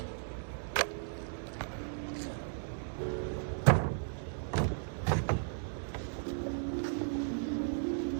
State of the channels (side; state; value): left; silent; 54 dB below the other